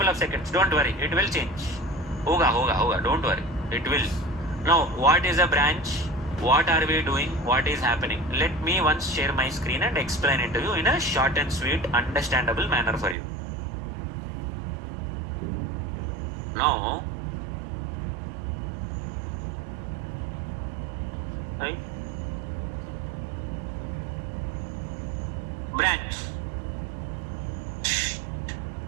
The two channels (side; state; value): left; drops out; at 13.2 s